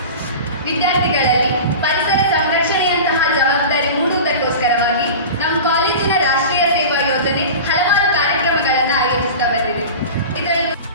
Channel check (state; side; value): inverted; both; correlation -0.32